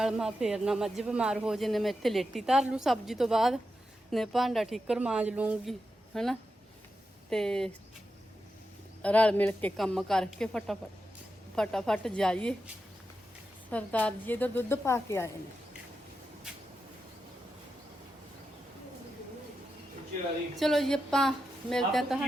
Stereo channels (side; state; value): both; normal; correlation 0.88